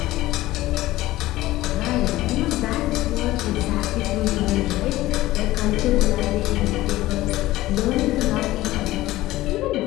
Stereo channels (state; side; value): quieter; right; 16.8 dB